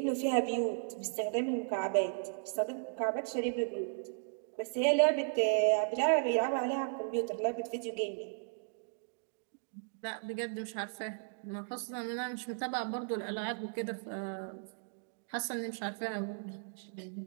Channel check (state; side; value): silent; left; digital silence